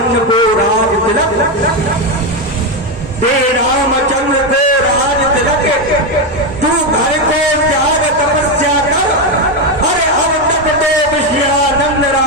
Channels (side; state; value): both; normal; correlation 0.09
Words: को राज तिलक, दे रामचंद्र को राज तिलक, तू घर को त्याग तपस्या कर, अरे अब तक तो विषयानंद